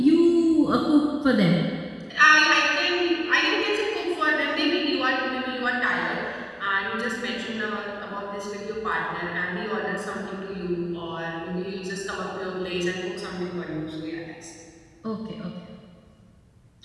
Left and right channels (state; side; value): identical; both; correlation 1.00